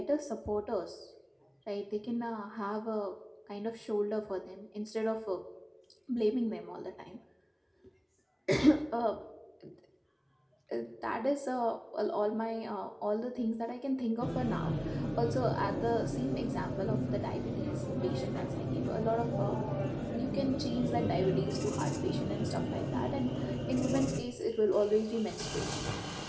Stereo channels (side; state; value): both; identical; correlation 1.00